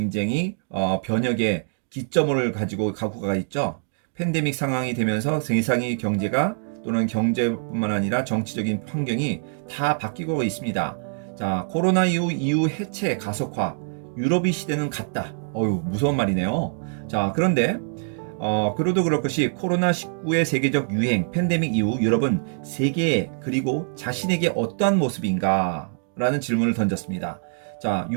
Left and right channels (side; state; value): left; silent; digital silence